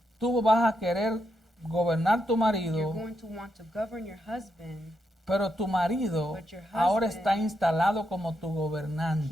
tú vas a querer gobernar tu you're marido, going to want to govern your husband. pero tu marido But your ahora husband, está instalado como tu He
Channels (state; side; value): normal; both; correlation 0.82